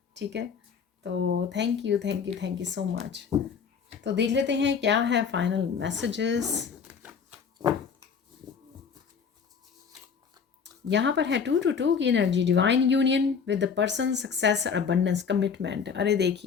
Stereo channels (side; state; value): right; quieter; 6.3 dB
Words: ठीक है, तो थैंक यू सो मच। तो देख लेते हैं क्या है फाइनल मैसेजेस। यहाँ पर है 2 की energy, divine union with the person, success और अबंडेंस, कमिटमेंट। अरे